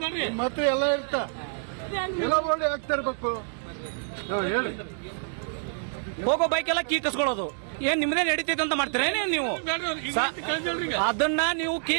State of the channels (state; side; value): silent; left; digital silence